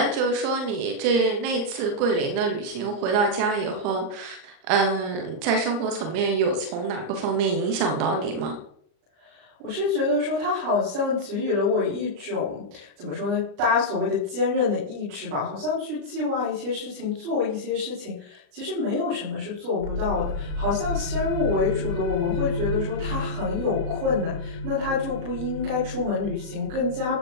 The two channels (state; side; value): late; left; 39 ms